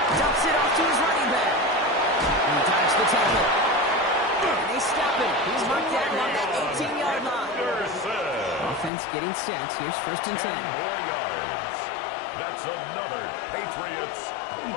dumps it off to his running back. He dodged the tackle. And they stop him. He's marked down on that 18-yard line. Offense getting set. Here's 1st and 10. 10 more yards. That's another Patriots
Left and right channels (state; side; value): drops out; right; at 8.9 s